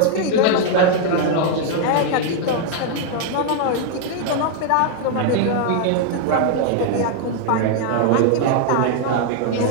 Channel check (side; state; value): both; different; correlation 0.00